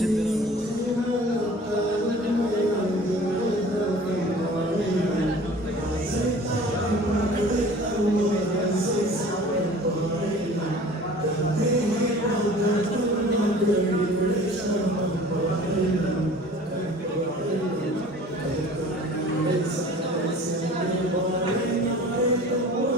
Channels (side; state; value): both; normal; correlation 0.45